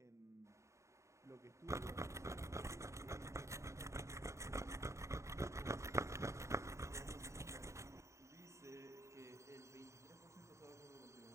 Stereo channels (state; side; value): late; left; 0.14 ms